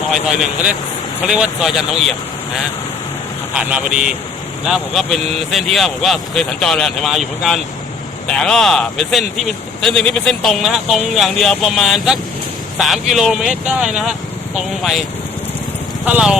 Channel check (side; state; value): right; quieter; 4.9 dB